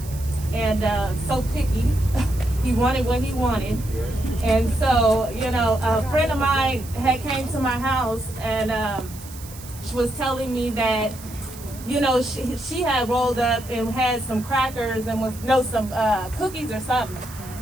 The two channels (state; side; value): noise; right; hiss, 17 dB below the sound